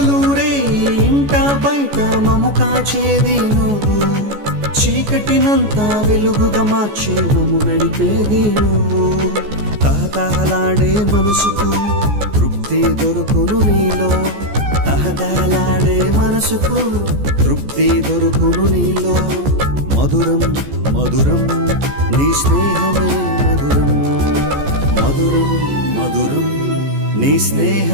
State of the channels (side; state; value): left; late; 14 ms